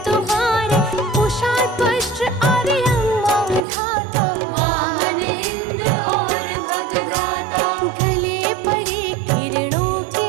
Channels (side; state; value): left; drops out; at 3.7 s